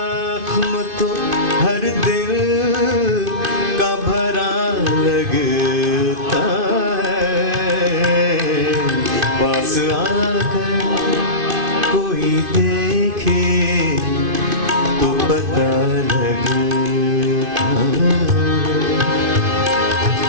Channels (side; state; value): left; late; 2.5 ms